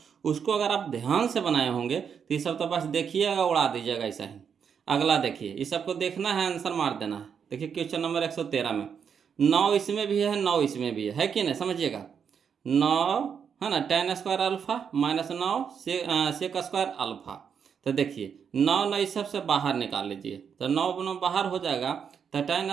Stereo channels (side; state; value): left; quieter; 7.1 dB